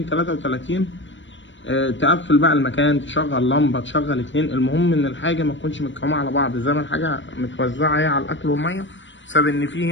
33. تقفل بقى المكان، تشغل لمبة، تشغل اتنين، المهم ان الحاجة ما تكونش متكومة على بعض، زي ما الحاجة متوزعة اهي على الاكل والمية، بسبب ان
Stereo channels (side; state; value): right; late; 0.54 ms